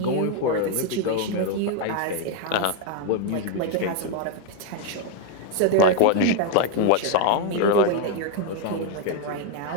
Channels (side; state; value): both; different; correlation 0.01